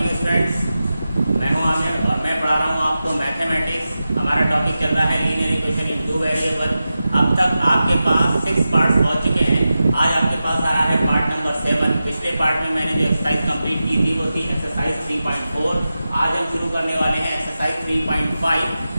students, मैं हूं आमिर और मैं पढ़ा रहा हूं आपको मैथमेटिक्स। हमारा टॉपिक चल रहा है linear equation in two variable. अब तक आपके पास 6 पार्ट्स पहुंच चुके हैं। आज आपके पास आ रहा है पार्ट नंबर 7। पिछले पार्ट में मैंने जो एक्सरसाइज कंप्लीट की थी वो थी एक्सरसाइज 3.4। आज हम शुरू करने वाले हैं एक्सरसाइज 3.5।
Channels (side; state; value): both; inverted; correlation -0.93